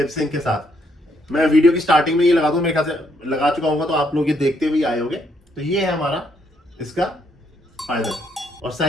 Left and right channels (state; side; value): normal; both; correlation 0.73